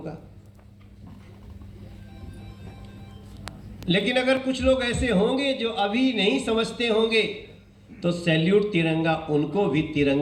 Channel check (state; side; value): identical; both; correlation 1.00